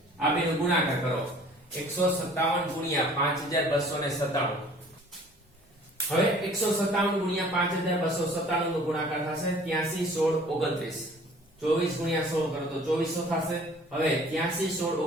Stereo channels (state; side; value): normal; both; correlation 0.51